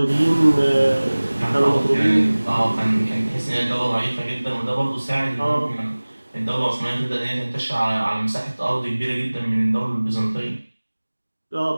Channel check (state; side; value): inverted; both; correlation -1.00